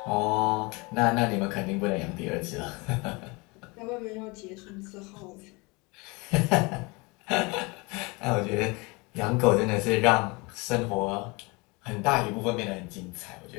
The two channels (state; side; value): quieter; right; 26.8 dB